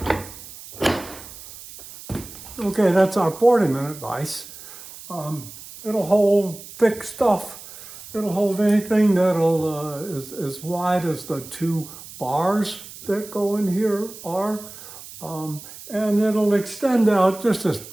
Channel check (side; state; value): right; noise; hiss, 16 dB below the sound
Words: Okay, that's our 40-minute vise. It'll hold thick stuff. It'll hold anything that'll is as wide as the two bars that go in here are. And it'll extend out just as